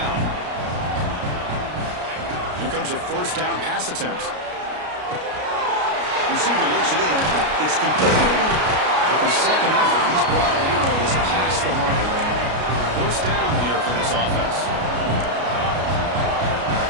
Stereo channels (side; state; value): left; late; 33 ms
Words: Here comes a first down pass attempt. Receiver looks it in. It's complete. With the second effort, he's brought arrows past the marker. First down here for this offense.